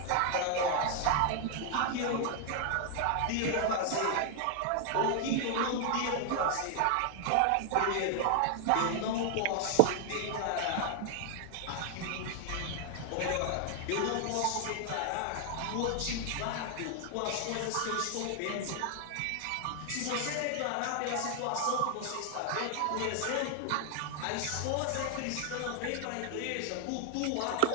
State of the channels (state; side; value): different; both; correlation 0.00